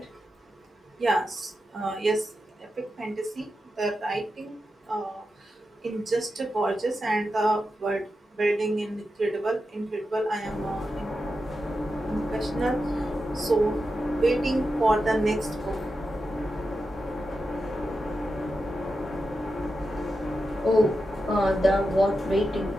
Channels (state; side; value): normal; both; correlation 0.89